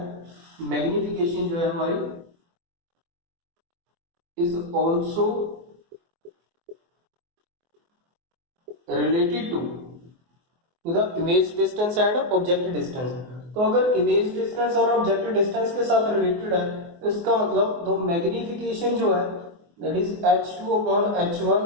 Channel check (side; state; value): left; late; 24 ms